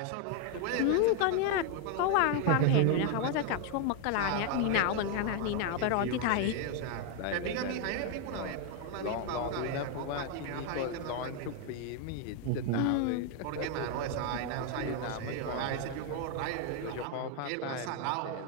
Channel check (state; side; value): different; both; correlation 0.01